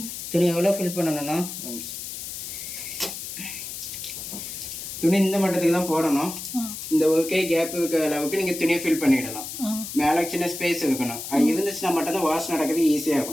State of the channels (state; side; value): noise; left; hiss, 8 dB below the sound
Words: துணி எவ்வளோ ஃபில் பண்ணணும்னா துணி இந்த மட்டத்துக்கு தான் போடணும். இந்த ஓகே கேப் இருக்க அளவுக்கு நீங்கள் துணியை ஃபில் பண்ணிடலாம். மேலே சின்ன ஸ்பேஸ் இருக்கணும். அது இருந்துச்சுன்னா மட்டும் தான் வாஷ் நடக்கிறது ஈஸியாக